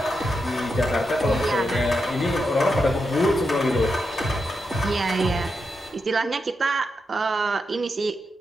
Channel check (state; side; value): normal; both; correlation 0.86